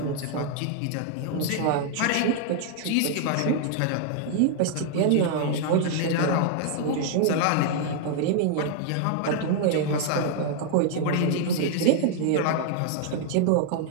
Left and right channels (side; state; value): both; different; correlation 0.00